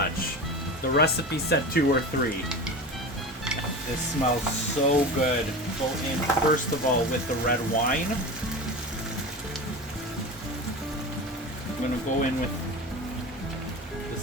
The recipe said 2 or 3. This smells so good. Go in first of all with the red wine. I'm gonna go in with the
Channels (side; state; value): both; normal; correlation 0.29